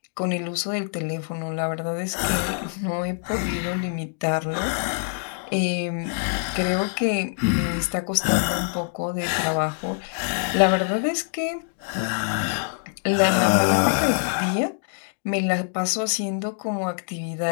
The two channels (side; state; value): right; silent; digital silence